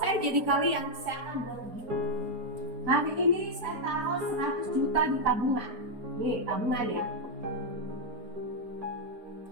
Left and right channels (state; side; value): late; left; 4.4 ms